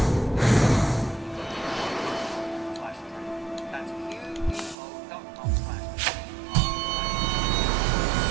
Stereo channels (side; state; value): left; drops out; at 4.8 s